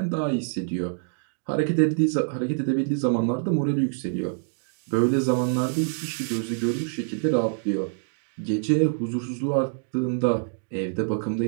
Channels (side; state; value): left; silent; digital silence